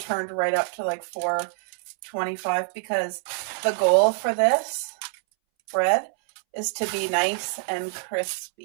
right up to like 425 because the goal for this bread is to be nice and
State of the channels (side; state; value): left; silent; 61 dB below the other